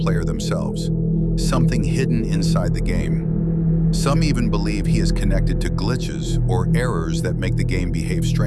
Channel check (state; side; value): identical; both; correlation 1.00